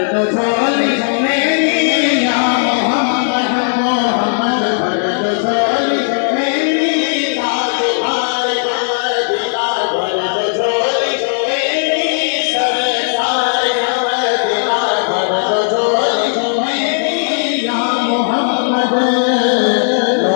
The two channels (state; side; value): silent; right; digital silence